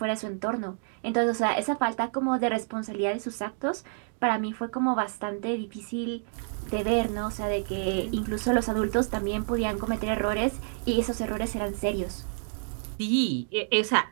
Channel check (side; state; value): left; silent; 59 dB below the other